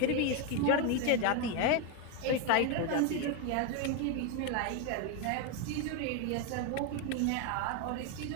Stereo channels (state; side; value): different; both; correlation 0.02